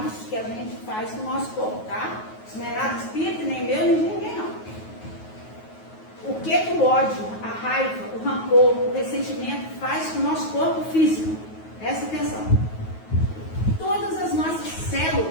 que a gente faz com o nosso corpo, tá? Isso não é nada de espírito, nem meu, nem de ninguém, não. O que o ódio, a raiva, o rancor, o ressentimento faz com o nosso corpo físico? Presta atenção. Todas as nossas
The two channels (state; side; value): late; right; 9.4 ms